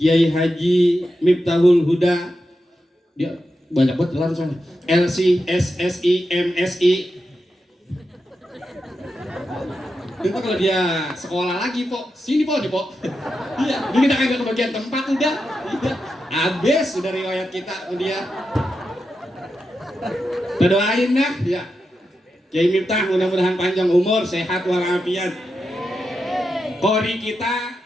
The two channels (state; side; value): normal; both; correlation 0.88